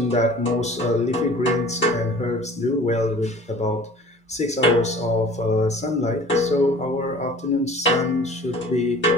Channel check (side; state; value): both; normal; correlation 0.46